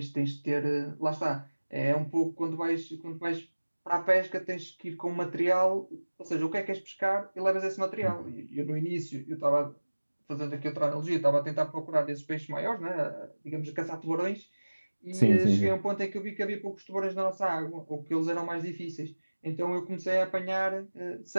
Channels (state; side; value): inverted; both; correlation -1.00